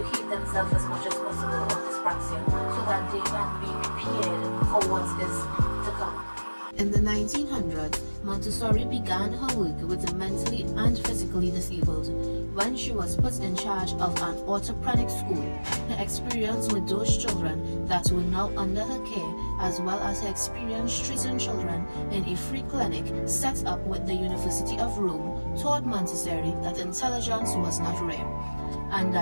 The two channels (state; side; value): inverted; both; correlation -1.00